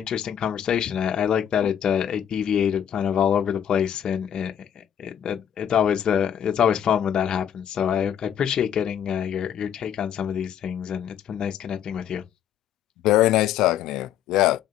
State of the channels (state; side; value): quieter; right; 9.3 dB